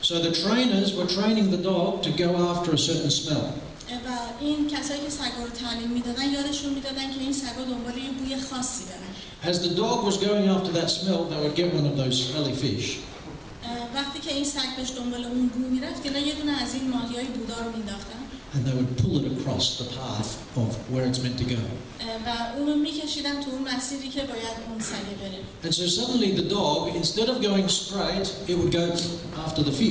So the trainers were training the dog to go after a certain smell. و این کسایی که سگا رو تعلیم میدادن یادشون میدادن که این سگا دنبال یه بوی خاصی برن. As the dog was going after that smell, they would get one of those smelly fish. وقتی که این سگ داشت دنبال اون بو میرفت که یه دونه از این ماهیای بودار رو مینداختن. And they would pull it across the path of where it's meant to go. و اونو میکشیدن تو اون مسیری که باید اون سگ بره. And so suddenly the dog, instead of going straight, it would go after the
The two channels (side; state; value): both; identical; correlation 1.00